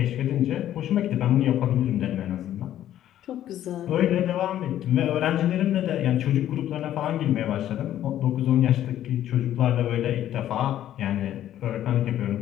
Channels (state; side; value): quieter; right; 12.0 dB